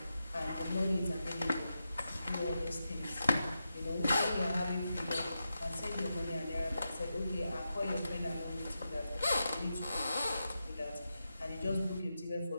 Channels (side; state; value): both; inverted; correlation -0.89